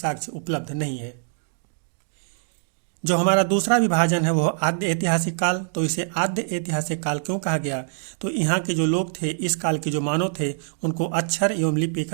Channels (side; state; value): left; silent; digital silence